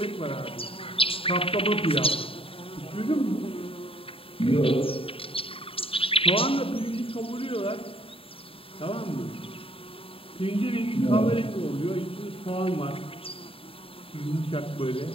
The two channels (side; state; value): right; late; 0.27 ms